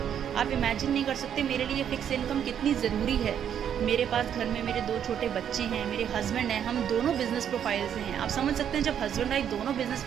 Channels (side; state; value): left; quieter; 9.1 dB